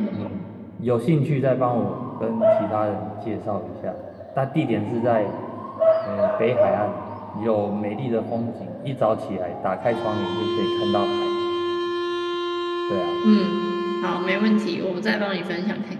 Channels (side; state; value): both; identical; correlation 1.00